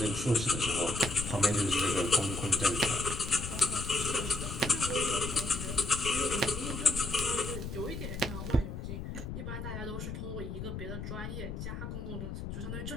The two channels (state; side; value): noise; left; rumble, 6 dB below the sound